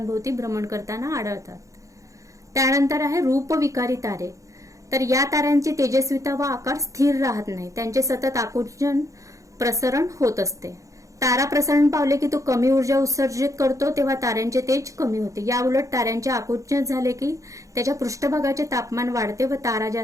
भ्रमण करताना आढळतात. त्यानंतर आहे रूपविकारी तारे. तर या ताऱ्यांची तेजस्विता व आकार स्थिर राहत नाही. त्यांचे सतत आकुंचन प्रसरण होत असते. तारा प्रसरण पावले की तो कमी ऊर्जा उत्सर्जित करतो, तेव्हा ताऱ्यांचे तेज कमी होते. या उलट ताऱ्यांचे आकुंचन झाले की त्याच्या पृष्ठभागाचे तापमान वाढते व तारा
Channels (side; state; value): left; late; 0.15 ms